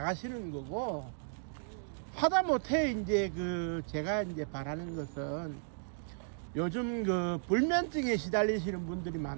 거고, 하다못해 이제 제가 이제 바라는 것은 요즘 불면증에 시달리시는 분들이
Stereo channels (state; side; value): silent; left; digital silence